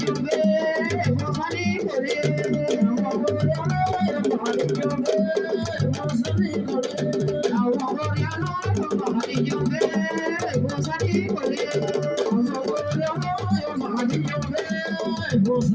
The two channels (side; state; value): both; identical; correlation 1.00